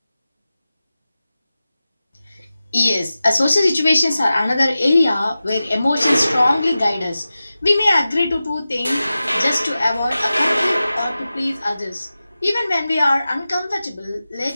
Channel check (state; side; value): inverted; both; correlation -0.95